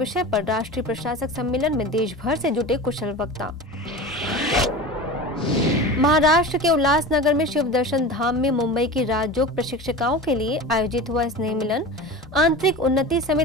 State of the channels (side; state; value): both; normal; correlation 0.32